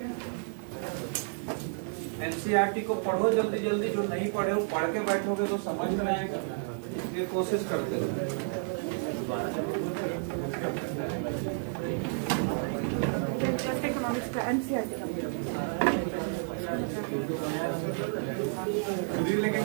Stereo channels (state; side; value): silent; left; 57 dB below the other